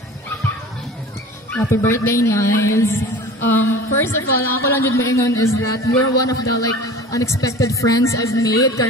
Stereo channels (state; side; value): normal; both; correlation 0.39